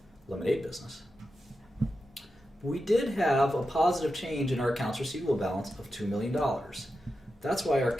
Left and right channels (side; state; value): both; normal; correlation 0.89